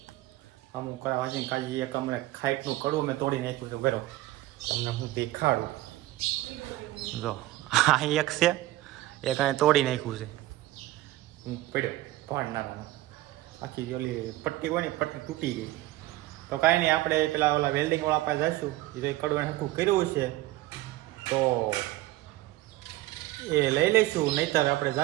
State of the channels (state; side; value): quieter; left; 17.0 dB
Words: હમું કરાવવા છે કાજી એક હમણાં ખાઈટનું કડવું મેં તોડી નાખ્યું છે. બરો તમને હું દેખાડું. જો આ એક છે, એક અહીં તોડી નાખ્યું છે. હું પડ્યો ભાડ નાખવાનો. આખી ઓલી પટ્ટી હોય ને પટ્ટી તૂટી ગઈ. તો કાંઈ નહીં, આપણે પેલા ઓલા વેલ્ડિંગવાળા પાસે જઈશું. એ તો એ કડવું હરખું કર્યું છે તો એ લઈ લઈશું, નહીંતર આપણે